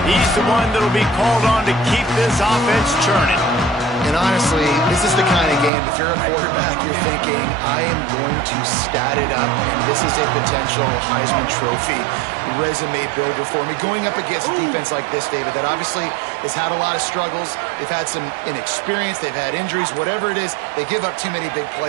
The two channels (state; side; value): drops out; left; at 5.7 s